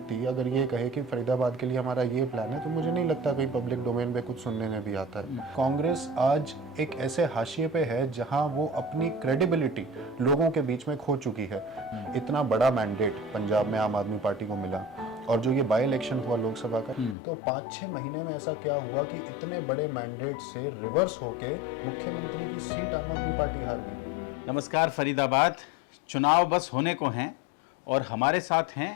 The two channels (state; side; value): drops out; right; at 17.2 s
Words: अगर ये कहे कि फरीदाबाद के लिए हमारा ये प्लान है, तो मुझे नहीं लगता कोई पब्लिक डोमेन में कुछ सुनने में भी आता है। कांग्रेस आज एक ऐसे हाशिए पे है जहां वो अपनी क्रेडिबिलिटी लोगों के बीच में खो चुकी है। इतना बड़ा मैंडेट पंजाब में आम आदमी पार्टी को मिला, और जो ये बाई इलेक्शन हुआ लोकसभा का, तो 5-6 महीने में ऐसा क्या हुआ कि इतने बड़े मैंडेट से रिवर्स होके मुख्यमंत्री की सीट आम आदमी पार्टी हार गई। नमस्कार फरीदाबाद, चुनाव बस होने को हैं और हमारे साथ